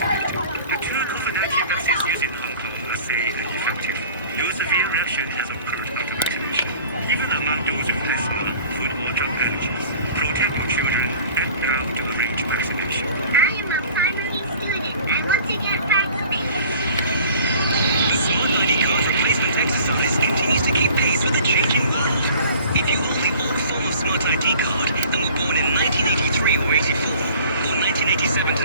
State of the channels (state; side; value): inverted; both; correlation -0.48